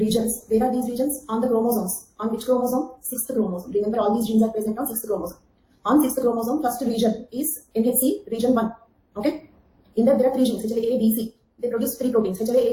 Where are these regions? On the chromosomes. On which chromosome? 6th chromosome. Remember, all these genes are present on 6th chromosome. On 6th chromosome, first region is NHC region 1. Okay? In that there are three genes, HLA-A, B, C. They produce three proteins, HLA-A,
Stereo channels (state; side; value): identical; both; correlation 1.00